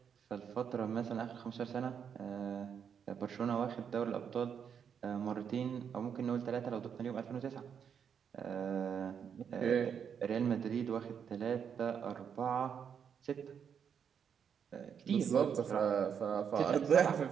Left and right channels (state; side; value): quieter; left; 7.5 dB